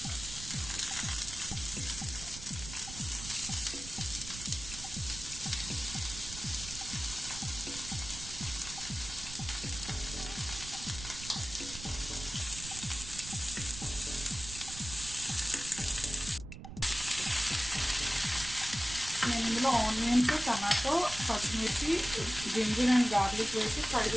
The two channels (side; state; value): right; noise; rumble, 11 dB below the sound